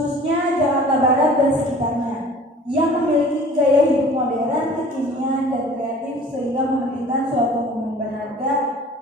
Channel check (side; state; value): both; normal; correlation 0.46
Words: Jakarta Barat dan sekitarnya, yang memiliki gaya hidup modern, kekinian, dan kreatif sehingga memberikan suatu momen berharga